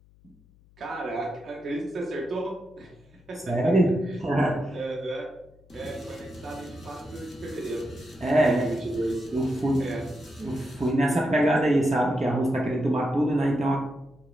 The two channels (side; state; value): left; noise; hum, 28 dB below the sound